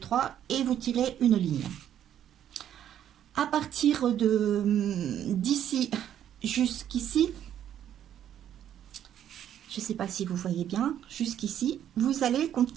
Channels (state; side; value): quieter; left; 10.4 dB